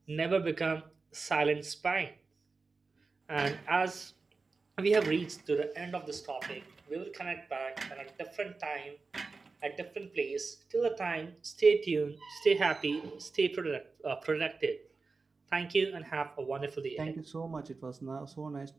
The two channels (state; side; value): quieter; left; 4.2 dB